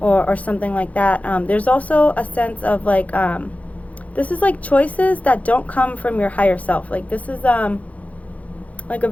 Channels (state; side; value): late; right; 0.069 ms